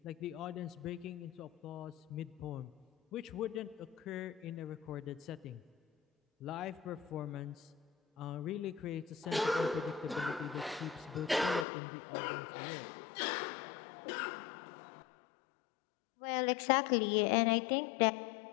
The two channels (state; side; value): drops out; right; at 11.7 s